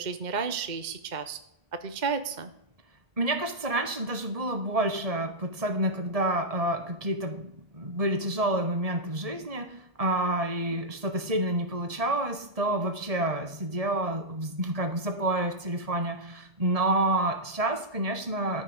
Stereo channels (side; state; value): left; late; 1.7 ms